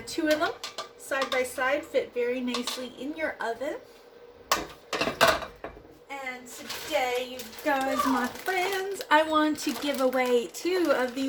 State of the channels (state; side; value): identical; both; correlation 1.00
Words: 2 of them side by side fit very nicely in your oven. And today, you guys, my friends, I want to give away 2 of